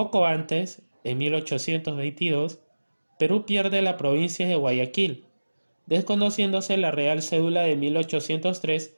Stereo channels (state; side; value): inverted; both; correlation -1.00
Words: antes, en 1822, Perú pierde la provincia de Guayaquil, desconociéndose la Real Cédula de 1803